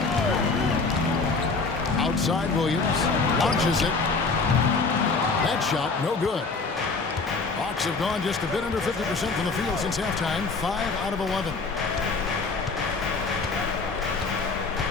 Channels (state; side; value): quieter; right; 4.1 dB